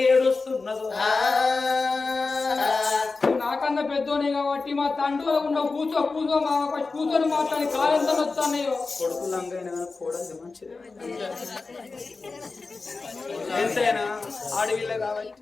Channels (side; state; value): right; quieter; 4.0 dB